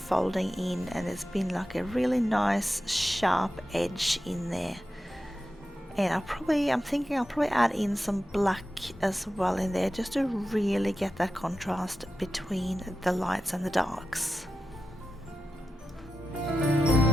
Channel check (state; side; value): normal; both; correlation 0.91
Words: in, and there's been like a really nice sharp edge in there. And I'm thinking I'll probably add in some black as well in there, just to really get that contrast between the lights and the darks.